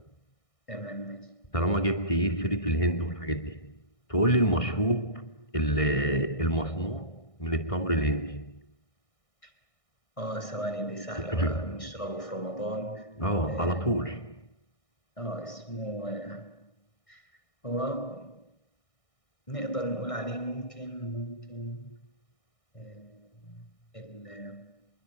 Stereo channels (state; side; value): late; right; 1.6 ms